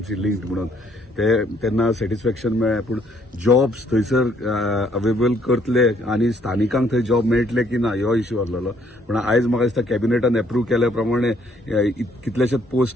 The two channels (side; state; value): both; normal; correlation 0.67